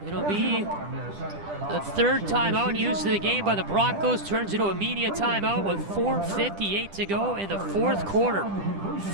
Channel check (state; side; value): late; left; 10 ms